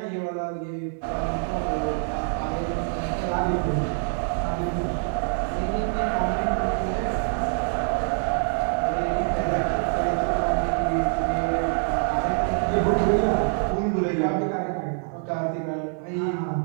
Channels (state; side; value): silent; left; 60 dB below the other